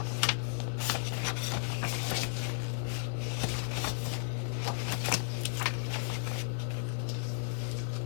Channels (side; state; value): right; silent; 55 dB below the other